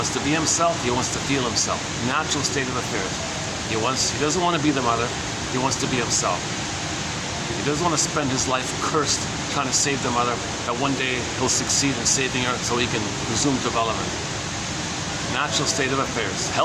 to be himself. He wants to feel himself. Natural state of affairs. He doesn't want to be the mother. He wants to be himself. He doesn't want to spend his life cursed trying to save the mother, that one day he'll succeed in saving her so he can resume development. Natural state of affairs.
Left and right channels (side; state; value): both; identical; correlation 1.00